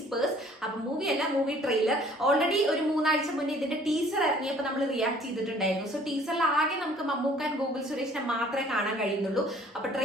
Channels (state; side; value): normal; both; correlation 0.55